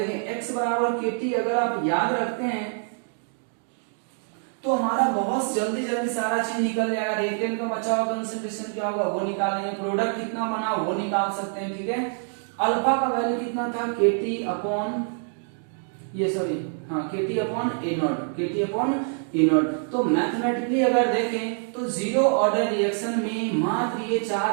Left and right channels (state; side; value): silent; left; 61 dB below the other